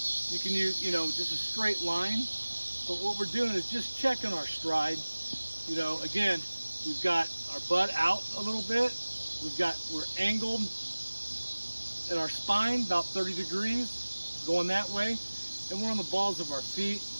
You can use, just a straight line. But what we're doing is just checking our stride. Again, we've got our butt out a little bit. We're angled at our spine about 30 degrees, going that way, and we're on the balls of our feet,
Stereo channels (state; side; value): inverted; both; correlation -1.00